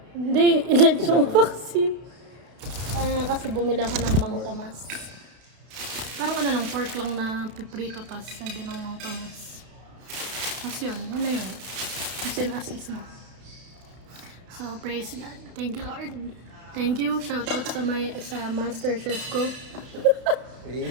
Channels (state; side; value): late; left; 32 ms